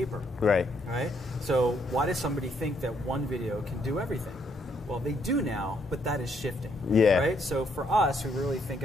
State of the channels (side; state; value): both; normal; correlation 0.72